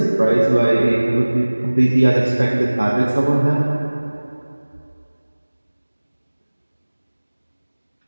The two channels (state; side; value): inverted; both; correlation -1.00